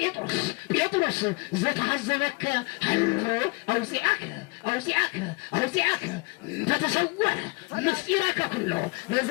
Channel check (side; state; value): right; quieter; 28.1 dB